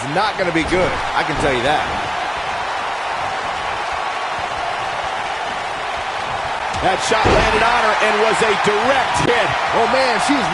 not going to be good. I can tell you that. That shot landed on her and was a direct hit. Oh, man, she's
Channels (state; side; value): identical; both; correlation 1.00